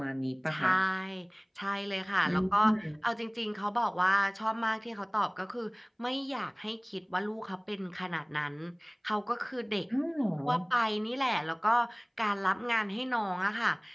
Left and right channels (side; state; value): both; identical; correlation 1.00